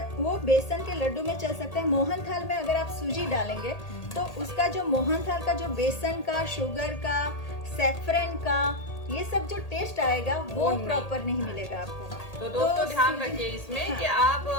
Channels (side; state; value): right; late; 1.8 ms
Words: वो बेसन के लड्डू में चल सकता है, मोहनथाल में अगर आप सूजी डालेंगे तो उसका जो मोहनथाल का जो बेसन का, शुगर का, सैफरन का, ये सब जो टेस्ट आएगा वो प्रॉपर नहीं मिलेगा आपको। तो दोस्तों ध्यान रखिए इसमें कि